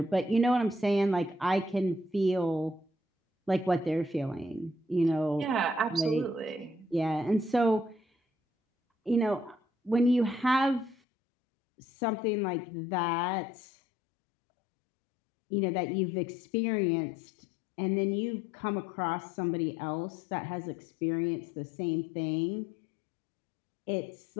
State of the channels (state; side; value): drops out; right; at 11.0 s